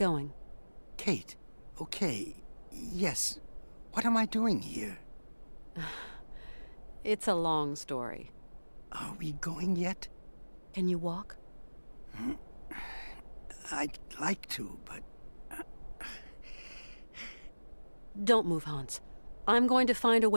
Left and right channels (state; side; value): inverted; both; correlation -1.00